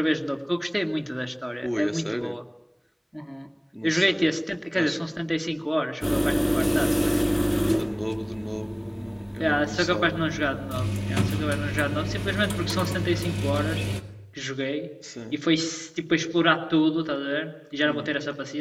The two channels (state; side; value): identical; both; correlation 1.00